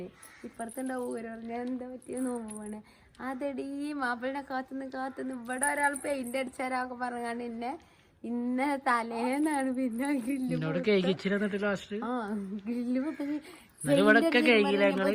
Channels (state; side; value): identical; both; correlation 1.00